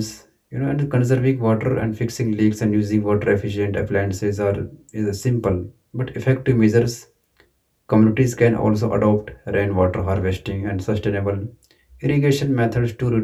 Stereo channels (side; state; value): both; identical; correlation 1.00